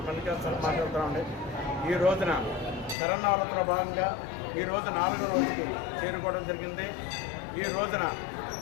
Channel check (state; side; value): drops out; right; at 3.0 s